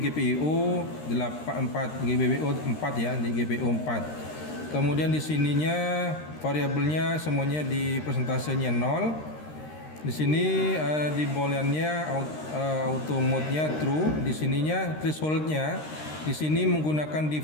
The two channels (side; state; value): right; late; 13 ms